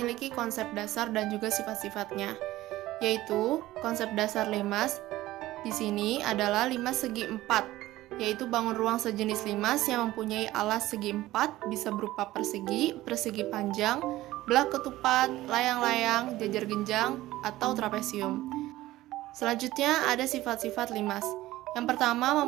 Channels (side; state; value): left; quieter; 16.4 dB